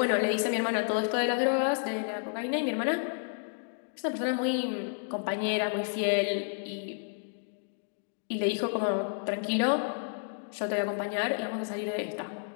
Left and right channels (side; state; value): right; silent; digital silence